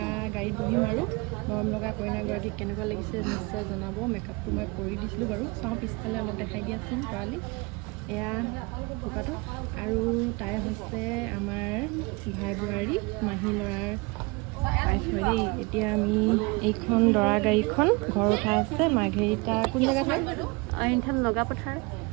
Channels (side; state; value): left; quieter; 27.4 dB